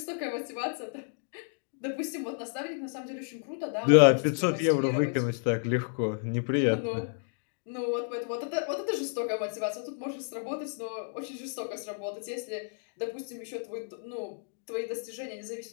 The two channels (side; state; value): right; silent; digital silence